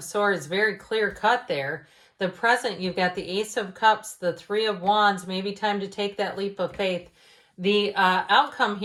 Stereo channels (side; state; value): both; identical; correlation 1.00